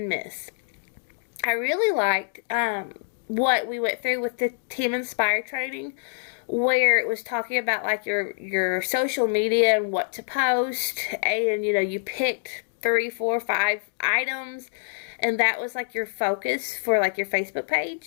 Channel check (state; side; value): silent; right; digital silence